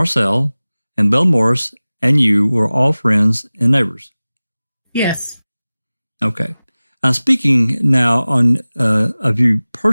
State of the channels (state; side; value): inverted; both; correlation -0.98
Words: and Bill Morris and you were all friends and neighbors. Yes. Okay. I'm speaking now of you